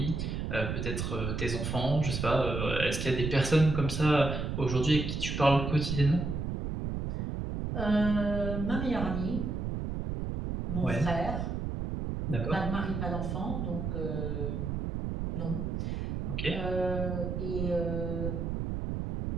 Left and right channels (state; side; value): noise; right; rumble, 2 dB below the sound